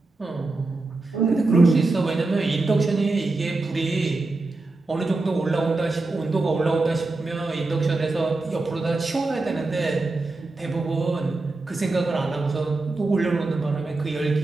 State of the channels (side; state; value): left; quieter; 3.3 dB